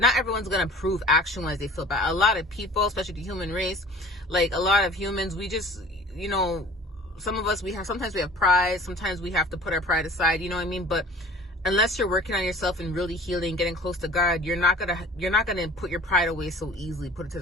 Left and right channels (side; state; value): both; normal; correlation 0.46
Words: everyone's gonna prove action-wise they feel bad. A lot of people, especially the human race, like a lot of humans, we just, you know, sometimes we have pride, sometimes we have to put our pride aside, you know what I mean? But unless you're working on yourself and really healing, getting close to God, you're not gonna put your pride away so easily, put it to